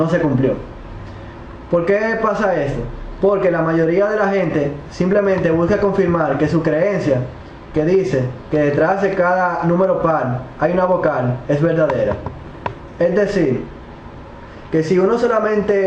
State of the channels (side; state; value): both; identical; correlation 1.00